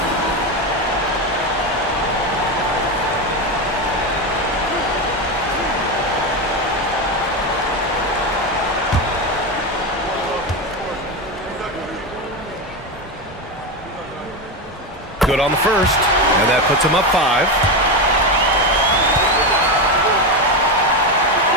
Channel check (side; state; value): both; normal; correlation 0.14